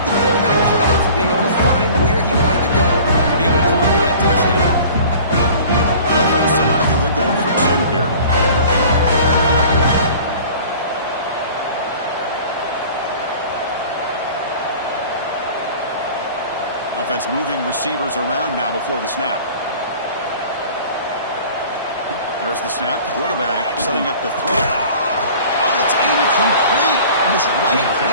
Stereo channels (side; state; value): both; inverted; correlation -0.45